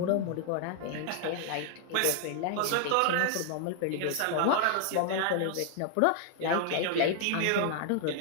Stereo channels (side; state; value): both; different; correlation 0.00